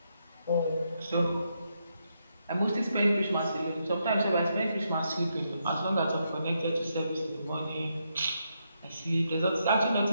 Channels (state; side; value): inverted; both; correlation -0.80